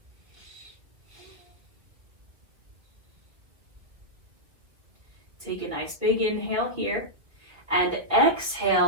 Take a nice big inhale here, and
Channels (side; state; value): left; late; 1.9 ms